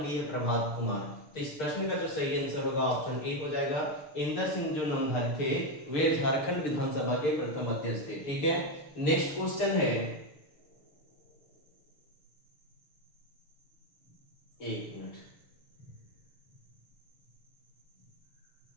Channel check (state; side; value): late; right; 6.6 ms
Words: डी है प्रभात कुमार। तो इस प्रश्न का जो सही आंसर होगा ऑप्शन ए हो जाएगा। इंदर सिंह जो नंदारी थे वे झारखंड विधानसभा के प्रथम अध्यक्ष थे। ठीक है, नेक्स्ट क्वेश्चन है, एक मिनट,